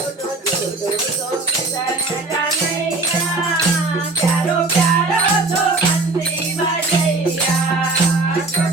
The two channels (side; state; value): left; quieter; 3.3 dB